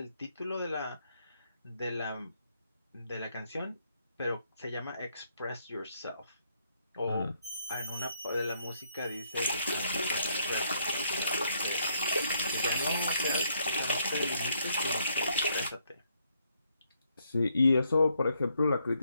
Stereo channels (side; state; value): both; inverted; correlation -0.73